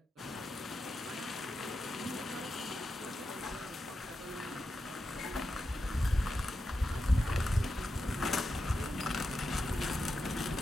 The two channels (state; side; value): normal; both; correlation 0.89